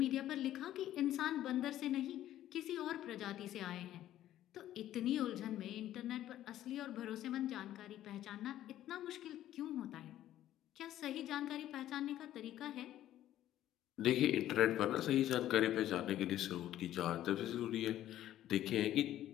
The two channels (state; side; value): quieter; right; 12.8 dB